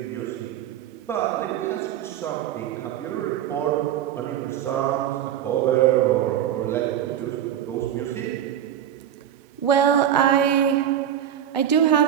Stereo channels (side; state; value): left; quieter; 10.3 dB